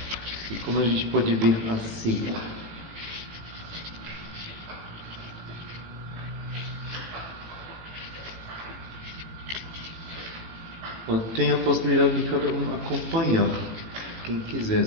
E como a gente pode ver assim. Tem a possibilidade de cada um acompanhar, quem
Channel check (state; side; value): late; left; 18 ms